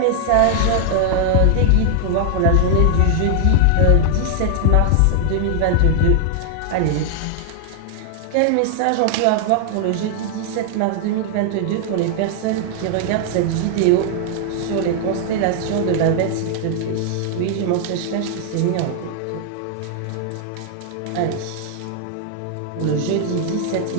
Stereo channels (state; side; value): different; both; correlation 0.00